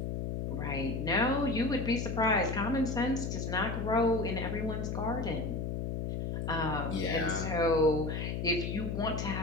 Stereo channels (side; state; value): left; noise; hum, 2 dB below the sound